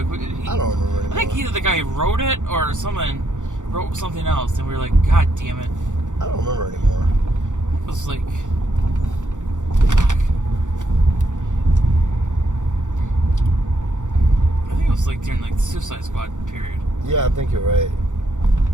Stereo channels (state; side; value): late; left; 0.86 ms